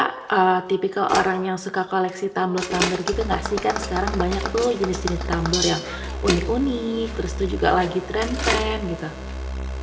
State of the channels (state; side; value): identical; both; correlation 1.00